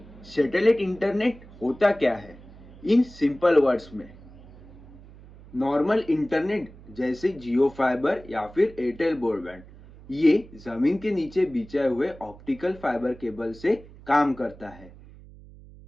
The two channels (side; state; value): right; noise; hum, 20 dB below the sound